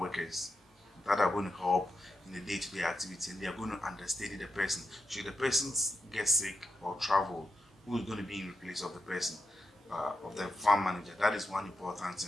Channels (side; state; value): both; normal; correlation 0.86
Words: that are going to help in the day-to-day activity, and they are going to understudy the person. Should the person get sick or travel, who is going to be in place of the person, of the farm manager? That is one important